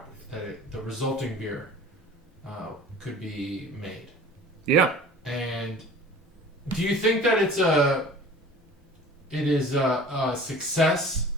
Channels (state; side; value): normal; both; correlation 0.44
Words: The resulting beer could be made. Yeah. And do you think that it is a success